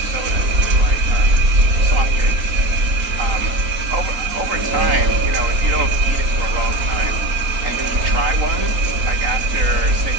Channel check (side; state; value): left; late; 3.9 ms